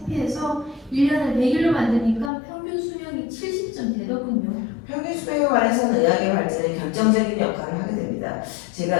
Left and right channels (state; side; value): drops out; right; at 2.3 s